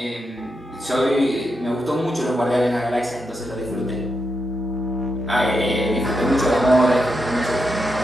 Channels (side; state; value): both; normal; correlation 0.84